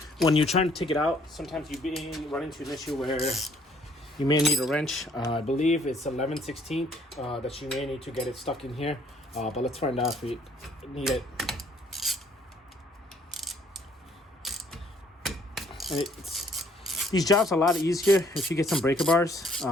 when you're trying to take it out, sometimes you run into an issue where you may need a wrench. I believe it's 11/16 that you may need to get it stuck in here. But let's find out if we need it. And these jobs are a lot easier if you get some breaker bars.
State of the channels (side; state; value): both; normal; correlation 0.63